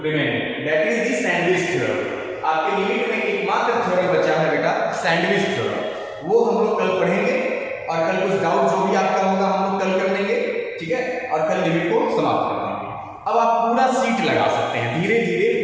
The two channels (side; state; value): both; identical; correlation 1.00